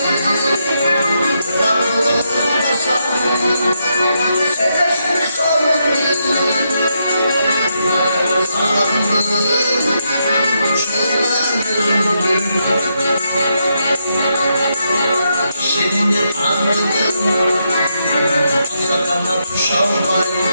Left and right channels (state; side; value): inverted; both; correlation -0.80